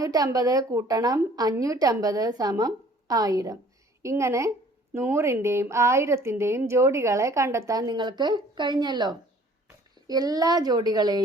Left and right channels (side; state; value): both; normal; correlation 0.54